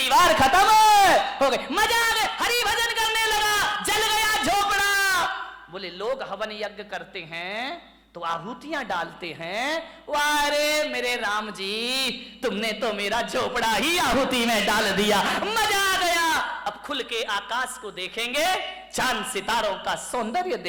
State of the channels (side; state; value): both; identical; correlation 1.00